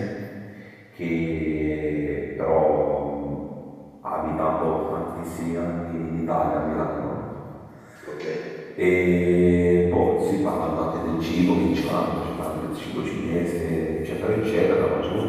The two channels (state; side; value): identical; both; correlation 1.00